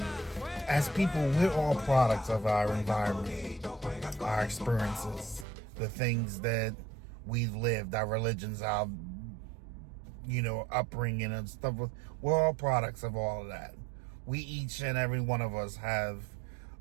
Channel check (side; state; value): left; drops out; at 5.5 s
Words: As people, we're all products of our environment, our experiences, the things that we've lived, our religions, our upbringing and stuff. We're all products of all of that. We, each and every one of us, have